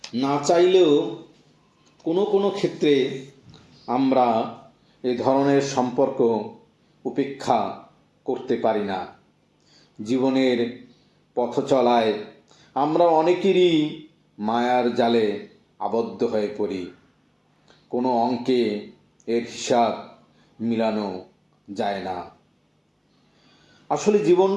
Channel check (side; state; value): both; identical; correlation 1.00